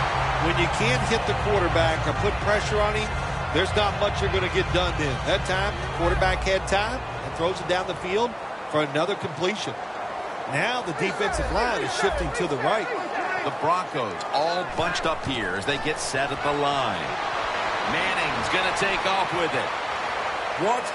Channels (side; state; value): both; identical; correlation 1.00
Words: When you can't hit the quarterback or put pressure on him, there's not much you're going to get done then. That time, the quarterback had time and throws it down the field for another completion. Now the defensive line is shifting to the right. The Broncos all bunched up here as they get set at the line. Manning's going to take off with it. Wants